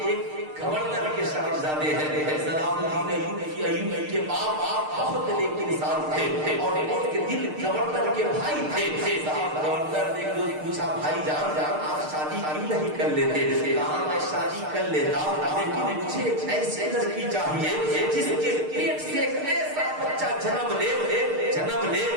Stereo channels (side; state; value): left; late; 6.6 ms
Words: گورنر کے صاحبزادے ہیں، صلاح الدین ایوبی کے باپ بہت نیک انسان تھے اور ان کے دل گورنر کے بھائی تھے۔ صاحب گورنر نے پوچھا بھائی جان آپ شادی کیوں نہیں کر لیتے؟ کہا میں شادی کر لیتا لیکن مجھے ایسی لڑکی چاہیے جس کے پیٹ سے ایک ایسا بچہ جنم لے